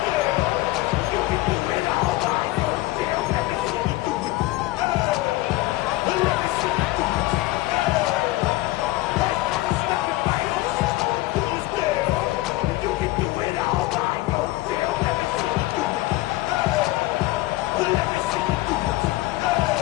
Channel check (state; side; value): quieter; right; 18.3 dB